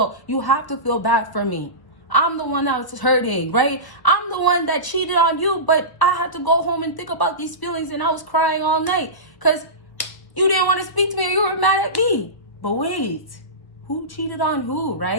you have to feel bad for me. I'm the one that was hurting, right? I'm the one that cheated on you, but I had to go home and think about these feelings and I was crying all night because you didn't want to speak to me or you were mad at me. But wait, who cheated on who,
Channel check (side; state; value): right; late; 1.0 ms